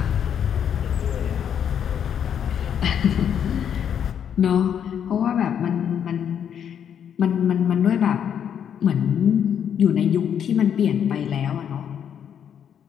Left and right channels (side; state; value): right; quieter; 8.6 dB